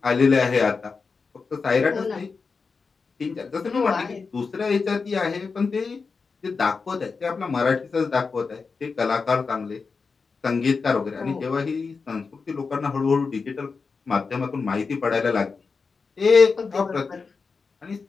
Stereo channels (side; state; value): right; quieter; 4.8 dB